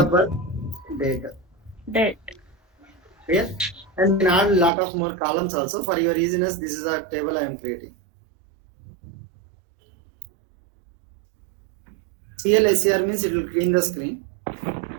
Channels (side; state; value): left; drops out; at 4.7 s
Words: birth. Date. Clear? And then add a lot of more columns also. For your easiness, this is a table I am creating. CLSCR means it will clean the screen.